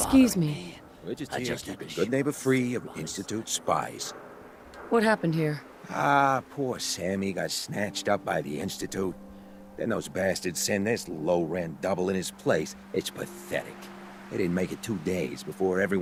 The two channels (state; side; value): identical; both; correlation 1.00